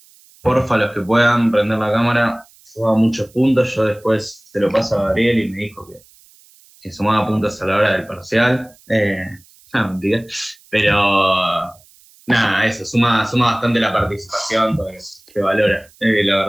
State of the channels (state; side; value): noise; right; hiss, 28 dB below the sound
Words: Porfa, los que puedan prender la cámara, suba muchos puntos. Yo después se lo paso a Gabriel y me dijo que sumaba puntos a la hora del parcial. Mentira. Pero nada, eso, suma bastante la participación, porque se valora, la